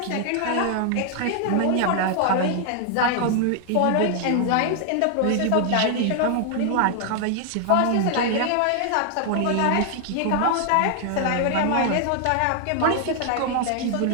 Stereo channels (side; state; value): both; different; correlation 0.00